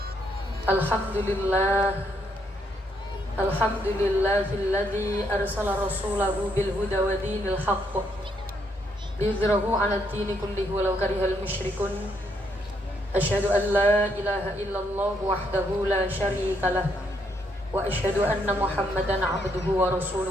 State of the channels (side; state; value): both; normal; correlation 0.74